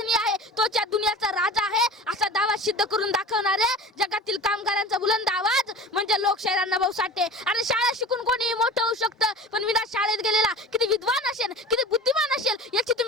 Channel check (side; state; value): both; normal; correlation 0.37